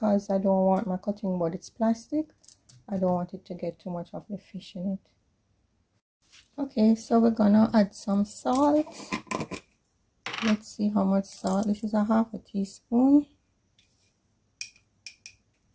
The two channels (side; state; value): both; identical; correlation 1.00